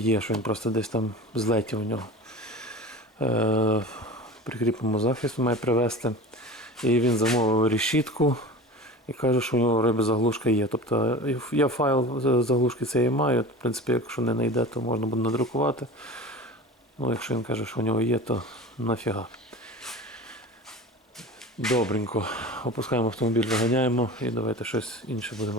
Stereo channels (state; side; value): normal; both; correlation 0.35